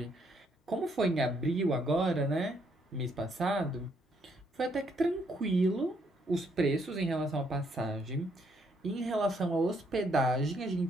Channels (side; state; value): both; normal; correlation 0.72